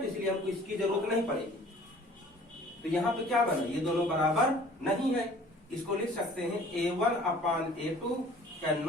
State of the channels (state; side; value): normal; both; correlation 0.51